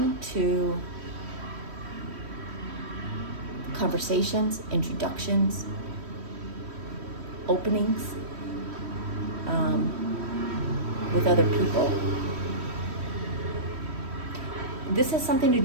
to conversations, introductions, openings with other people. This has something to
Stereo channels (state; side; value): late; left; 3.1 ms